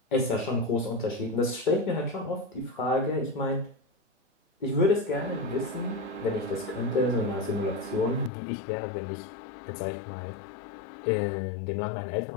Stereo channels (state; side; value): drops out; right; at 8.3 s